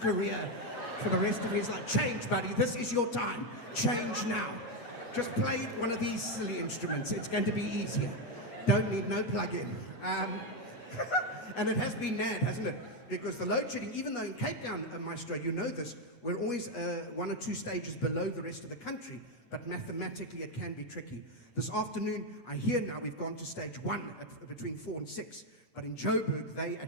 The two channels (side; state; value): right; late; 8.3 ms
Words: for the rest of his life. Change, buddy. This is your time. Change now. Just play one of these silly instruments. It's going to be easier. Don't need no plug-in. And it has been mad, hasn't it? Because the load shedding, even though in Cape Town, Maestro, you know this, we're always 1 or 2 stages below the rest of the country, but mathematically it can be tricky. This afternoon, I hear now we've gone to stage 1 between 4 and 6, but in Joburg, they